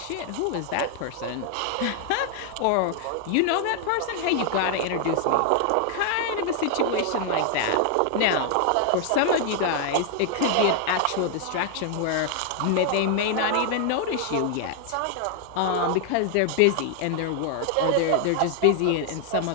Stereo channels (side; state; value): both; different; correlation 0.00